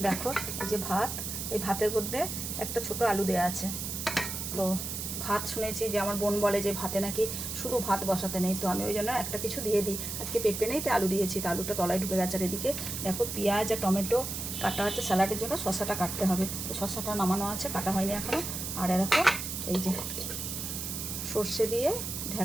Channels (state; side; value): noise; right; hiss, 5 dB below the sound